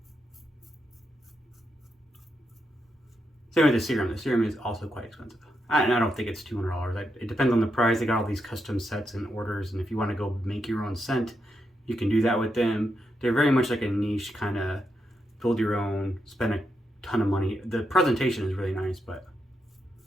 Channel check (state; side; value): normal; both; correlation 0.83